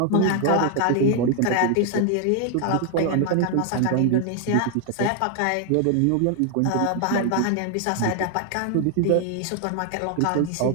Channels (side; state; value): both; different; correlation 0.00